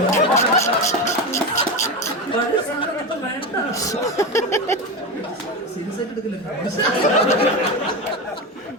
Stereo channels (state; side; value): normal; both; correlation 0.18